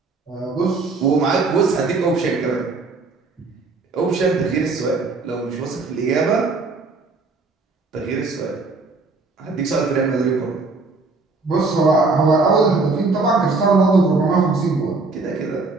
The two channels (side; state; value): left; quieter; 3.9 dB